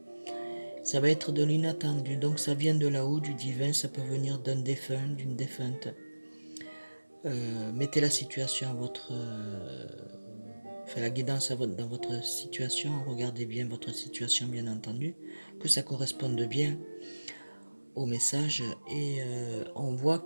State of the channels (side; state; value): both; inverted; correlation -1.00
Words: Ça va être de l'inattendu. Donc ça vient de là-haut, du divin, ça peut venir d'un défunt, d'une défunte. Mettez la situation à votre... Enfin, la guidance dans votre situation. Regardez bien votre situation, bien entendu. Que ça corresponde bien au message. Et on voit